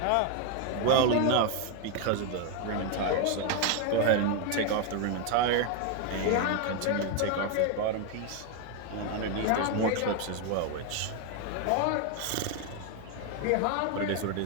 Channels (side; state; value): both; different; correlation 0.01